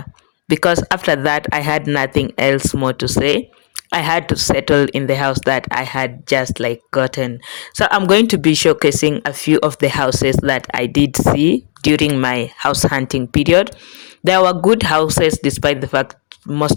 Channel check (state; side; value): silent; right; digital silence